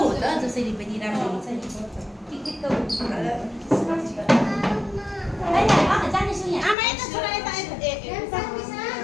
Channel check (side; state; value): right; drops out; at 6.8 s